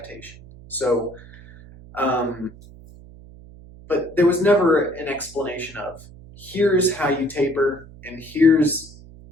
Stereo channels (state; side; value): noise; right; hum, 20 dB below the sound